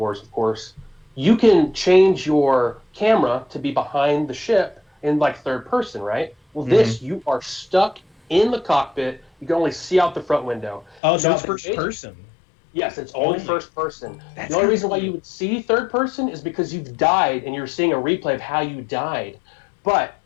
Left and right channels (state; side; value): drops out; right; at 11.0 s